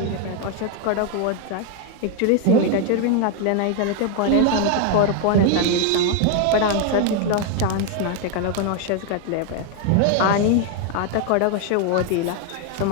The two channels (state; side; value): different; both; correlation 0.01